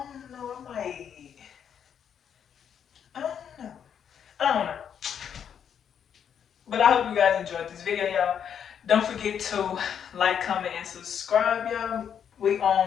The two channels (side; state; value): right; quieter; 8.2 dB